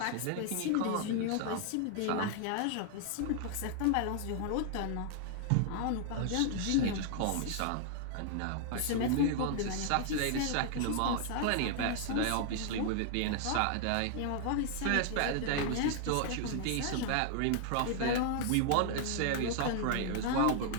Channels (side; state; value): both; different; correlation 0.00